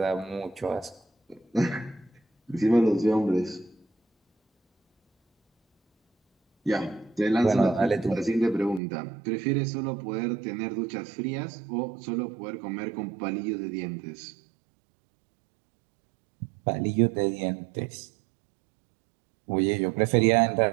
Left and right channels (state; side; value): drops out; left; at 8.8 s